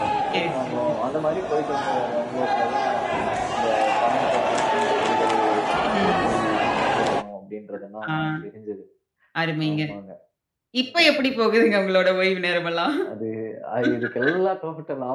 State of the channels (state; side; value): identical; both; correlation 1.00